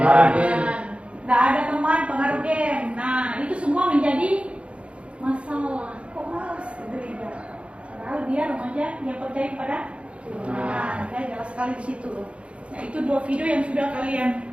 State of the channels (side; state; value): left; late; 0.060 ms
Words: nggak ada teman, pengaruh game. Nah, itu semua menjadi masalah. Kok malas ke gereja? Padahal dia remaja yang percaya kepada Tuhan. Nah, ya jelas sekali di situ. Nah, itu dua video yang sudah kalian